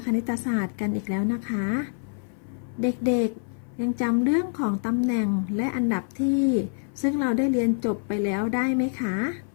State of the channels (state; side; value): silent; right; 57 dB below the other